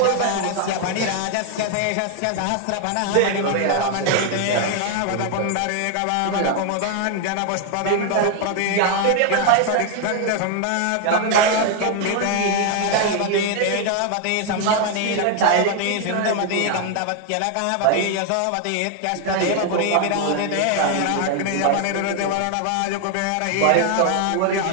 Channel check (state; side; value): different; both; correlation 0.01